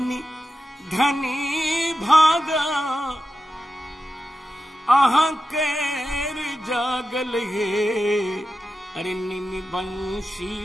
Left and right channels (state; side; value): normal; both; correlation 0.91